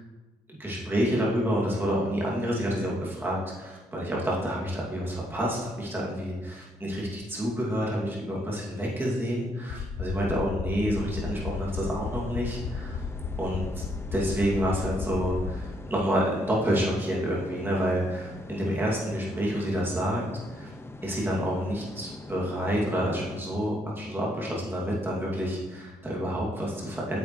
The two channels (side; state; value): both; normal; correlation 0.72